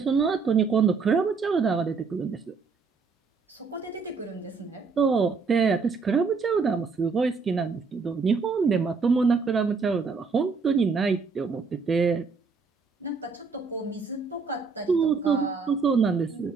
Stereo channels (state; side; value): quieter; left; 4.9 dB